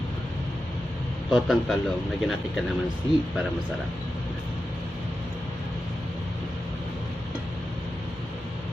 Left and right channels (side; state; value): both; normal; correlation 0.91